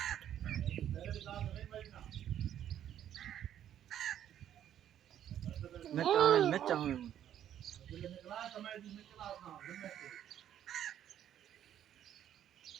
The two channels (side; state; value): left; quieter; 10.6 dB